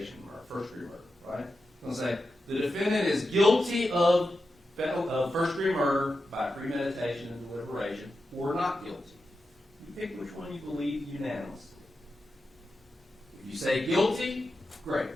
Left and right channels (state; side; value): normal; both; correlation 0.90